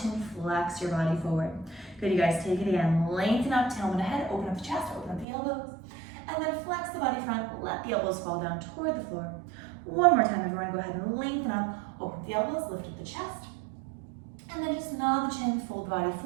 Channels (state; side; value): drops out; left; at 5.2 s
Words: flex your body forward. Good, you guys, take it again. Lengthen up, tailbone ahead, open up the chest, open up the elbows. And then flex the body front, let the elbows fall down toward the floor. One more time, everyone, go ahead and lengthen up, open up the elbows, lift up the chest. And then just nod the chin, fold the body